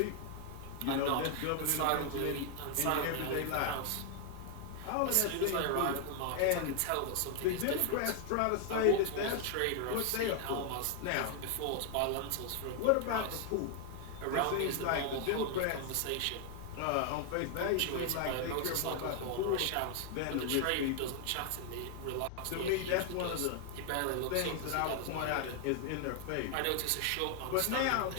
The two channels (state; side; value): different; both; correlation 0.00